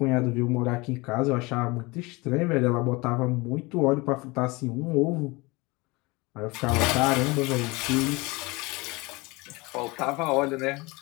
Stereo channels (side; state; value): right; quieter; 24.6 dB